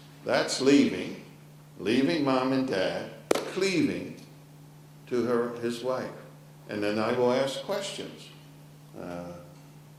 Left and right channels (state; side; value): identical; both; correlation 1.00